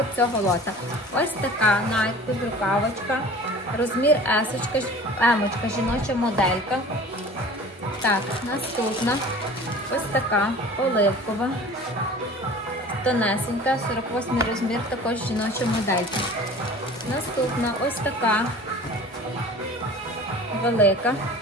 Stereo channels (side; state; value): both; normal; correlation 0.43